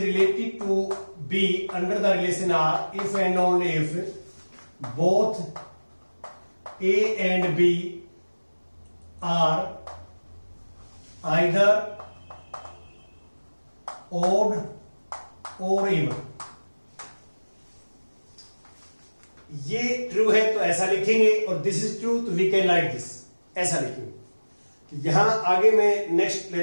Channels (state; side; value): inverted; both; correlation -1.00